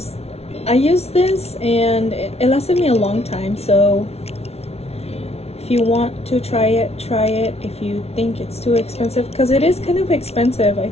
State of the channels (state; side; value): late; right; 0.31 ms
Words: I used this and it lasted me a long time. So if you want to try it, try it. If you think it's too expensive, because it is kind of expensive. I